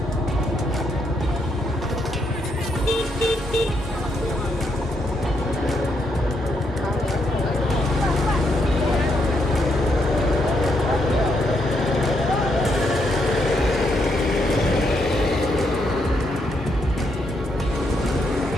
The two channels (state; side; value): normal; both; correlation 0.77